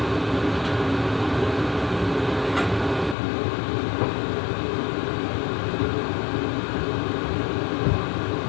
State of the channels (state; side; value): drops out; right; at 3.2 s